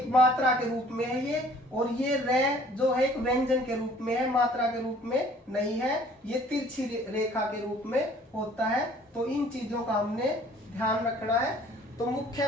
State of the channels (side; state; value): both; normal; correlation 0.54